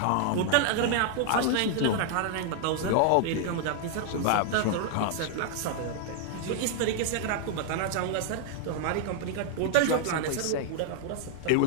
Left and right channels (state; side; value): different; both; correlation 0.00